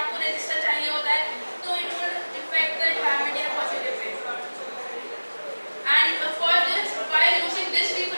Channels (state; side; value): inverted; both; correlation -1.00